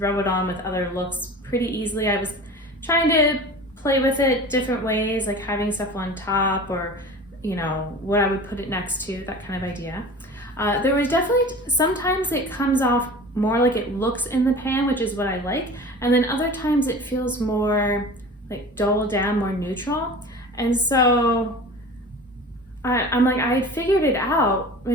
it on with other looks pretty easily. I was trying to play with it different ways, like having stuff on top, or, what I would put it next to, that kind of idea. There was definitely, sometimes it comes off more like it looks in the pan, which is what I like. And then other times it feels more dull down, more neutral. And so I'm like, I figured it out,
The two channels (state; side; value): normal; both; correlation 0.38